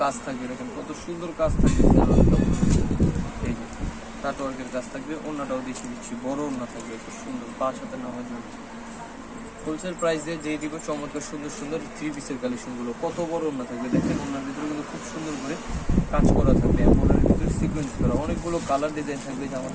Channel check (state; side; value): identical; both; correlation 1.00